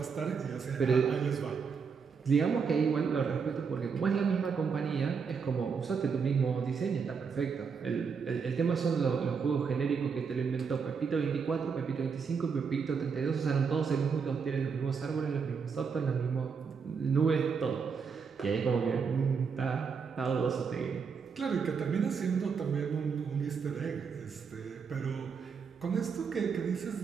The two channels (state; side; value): quieter; left; 5.8 dB